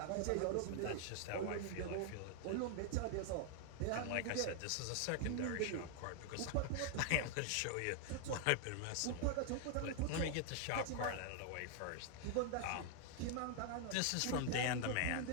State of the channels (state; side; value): different; both; correlation 0.00